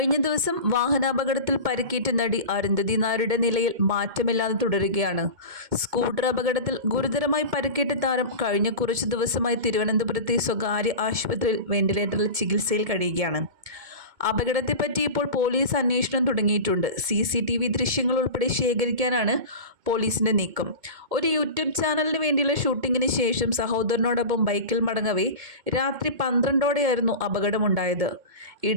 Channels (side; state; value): left; late; 2.2 ms